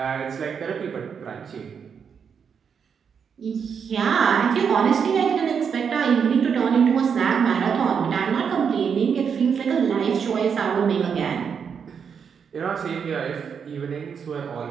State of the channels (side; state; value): left; quieter; 6.8 dB